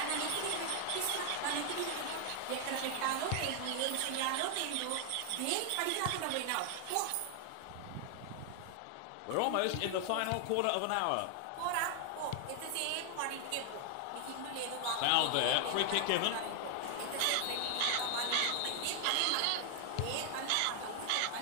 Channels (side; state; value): both; different; correlation 0.00